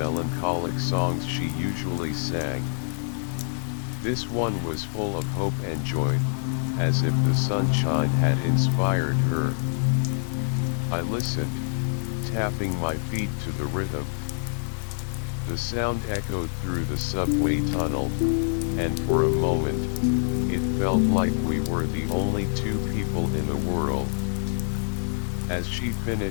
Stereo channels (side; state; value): right; silent; digital silence